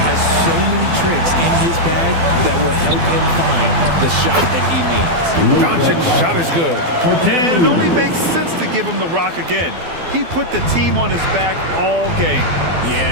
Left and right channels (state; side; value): late; left; 12 ms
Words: has so many tricks in his bag that will help him find the shot that he needs. Doncic's shot is good. And it only makes sense to give him the rock again. He put the team on his back all game.